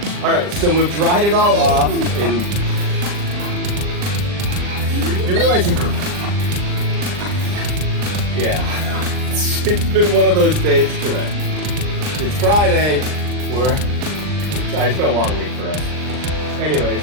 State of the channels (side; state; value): left; late; 39 ms